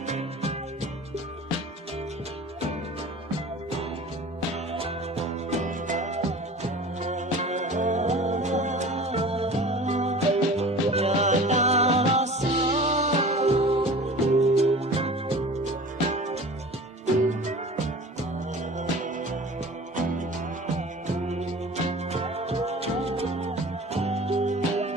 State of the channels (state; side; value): normal; both; correlation 0.41